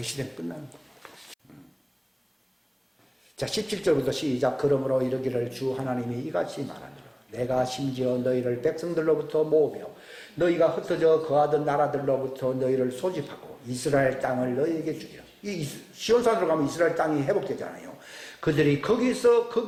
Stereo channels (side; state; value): both; identical; correlation 1.00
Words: 시대는 끝나는 겁니다. 자, 17절부터 시작. 그러므로 이르기를 주 하나님이 이같이 말하니라. 내가 심지어 너희를 백성들로부터 모으며 너희가 흩어져 거하던 나라들로부터 너희를 소집하고 이스라엘 땅을 너희에게 주리라. 이 시온산으로 가면 이스라엘 땅이 회복되잖아요. 그들이